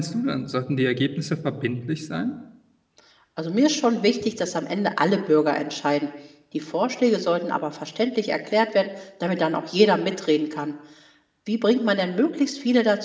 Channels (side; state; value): both; identical; correlation 1.00